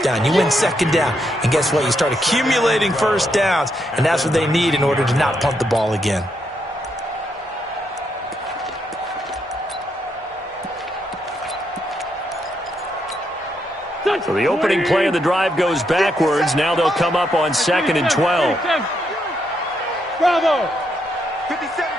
down. You win second down. And guess what? You start accumulating first downs, and that's what they need in order to not punt the ball again. So the opening play of the drive goes backwards. Now they'll come up on 2nd and 12. Bravo. 57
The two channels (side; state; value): both; normal; correlation 0.79